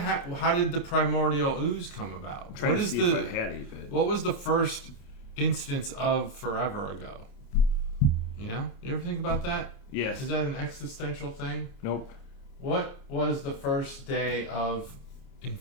how did the primordial ooze come about? What was the first instance of forever ago? Yeah, you ever think about that? Yes. Is that an existential thing? Nope. What was the first day of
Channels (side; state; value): right; late; 29 ms